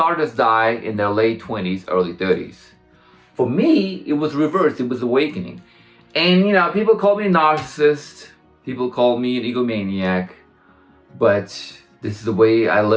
artists die in their late 20s, early 30s. For me, it was reversed. It was awakening. And, you know, people call me a narcissist. People call me an egomaniac. But this is the way I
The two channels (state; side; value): identical; both; correlation 1.00